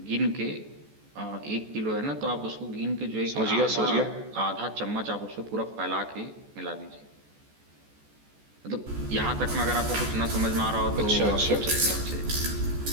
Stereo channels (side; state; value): left; late; 14 ms